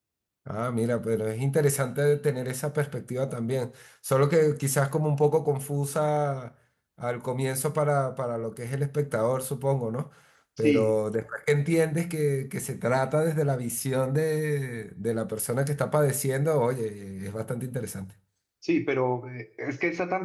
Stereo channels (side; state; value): both; identical; correlation 1.00